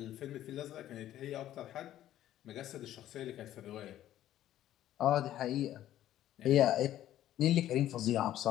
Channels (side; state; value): right; quieter; 12.7 dB